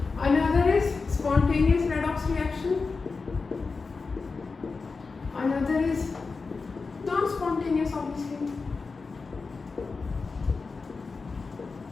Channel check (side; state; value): right; quieter; 4.4 dB